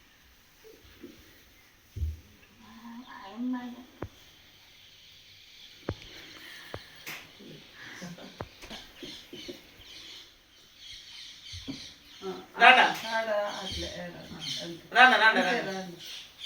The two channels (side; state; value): both; identical; correlation 1.00